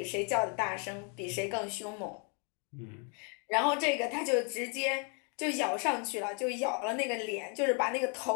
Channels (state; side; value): quieter; right; 38.1 dB